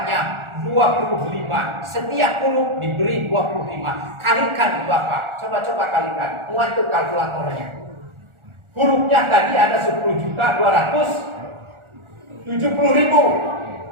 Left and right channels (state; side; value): late; left; 1.4 ms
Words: 25. Setiap huruf diberi 25. Kalikan Bapak. Coba-coba kalikan. Muat tuh kalkulatornya. Hurufnya tadi ada 10.270.000